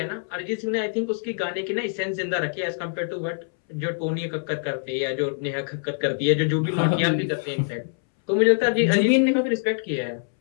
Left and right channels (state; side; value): silent; right; 62 dB below the other